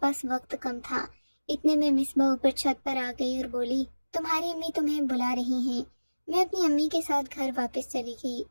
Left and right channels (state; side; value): inverted; both; correlation -1.00